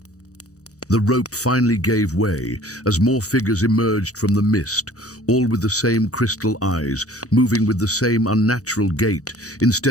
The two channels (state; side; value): late; right; 0.66 ms